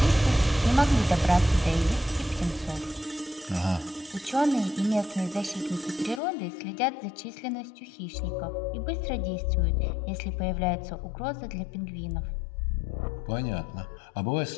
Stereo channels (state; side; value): drops out; right; at 6.2 s